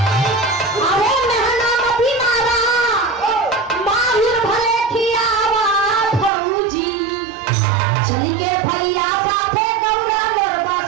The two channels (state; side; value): drops out; left; at 6.3 s